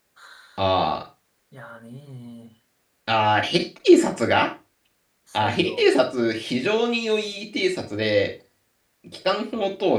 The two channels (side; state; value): both; identical; correlation 1.00